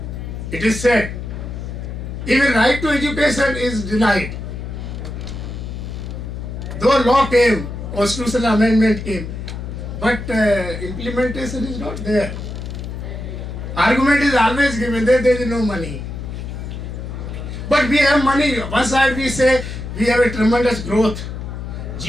It is said. Even right to education is denied. Though law came, constitutional amendment came, but implementation is not there. Argument is always given that there is no money. But we have money. One side we say we have a tremendous growth.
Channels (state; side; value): noise; left; hum, 7 dB below the sound